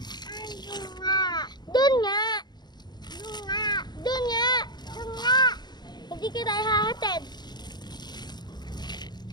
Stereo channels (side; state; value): right; late; 0.21 ms